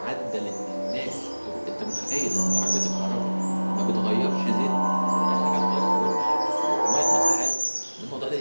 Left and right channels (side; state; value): both; inverted; correlation -1.00